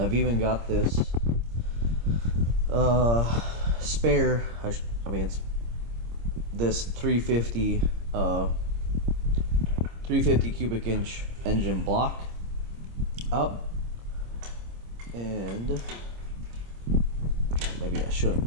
even got this spare, it's this 350 cubic inch engine block up, and maybe I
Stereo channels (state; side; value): late; left; 26 ms